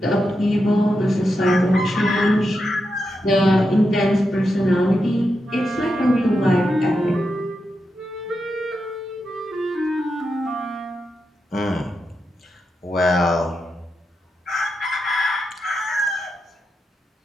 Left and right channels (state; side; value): normal; both; correlation 0.86